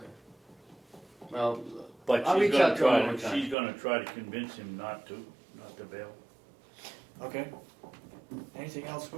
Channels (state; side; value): drops out; left; at 3.6 s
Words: Well, But I'll she's reach out gonna to him try, one time. she's gonna try to convince him not to bail. Okay. Anything else,